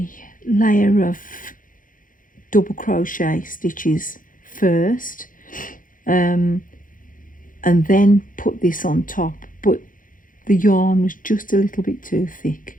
layer of double crochet stitches first, and then put this on top, but the yarn was just a little bit too thick.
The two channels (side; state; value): right; late; 0.39 ms